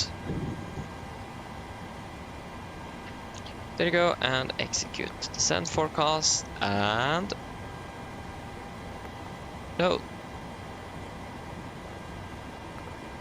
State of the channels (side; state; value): both; identical; correlation 1.00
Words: There you go, and execute. Descent forecast and load.